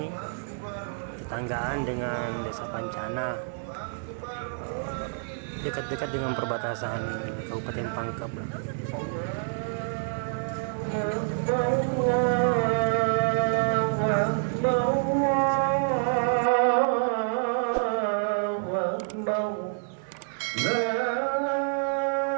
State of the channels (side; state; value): left; silent; 60 dB below the other